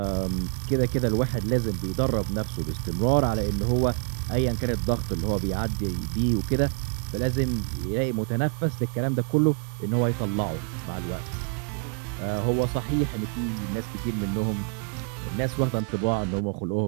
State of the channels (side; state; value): left; quieter; 39.5 dB